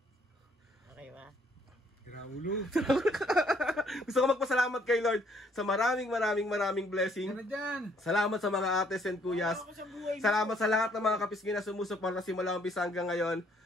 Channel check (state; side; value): normal; both; correlation 0.66